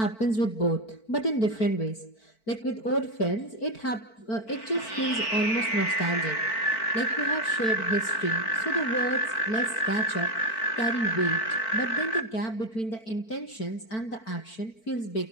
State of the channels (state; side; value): late; right; 4.5 ms